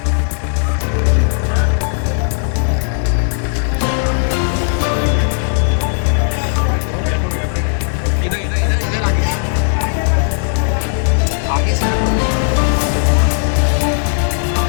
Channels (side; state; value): right; silent; digital silence